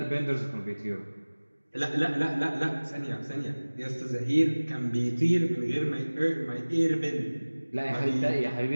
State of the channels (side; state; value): both; inverted; correlation -1.00